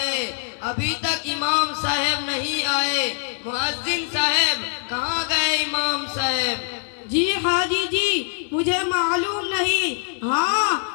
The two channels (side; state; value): right; silent; 57 dB below the other